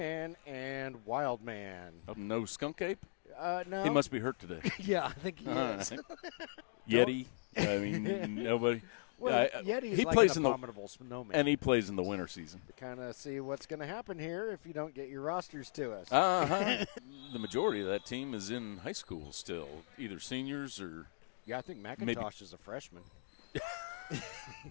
and Wild Man. No skunk ape? No. He must be hurt today. Yeah, I think he is. Yeti? I mean, nobody. Well, Yeti's like an abominable snowman. And he plays in the winter season. Kind of see what's going to happen here if you don't get your rosters to us. The majority of that team is in high school still, either seniors or... Yeah, I think McIntosh is a freshman.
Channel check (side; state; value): right; silent; digital silence